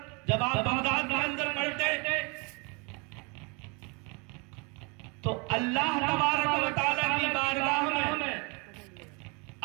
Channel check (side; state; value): left; quieter; 31.2 dB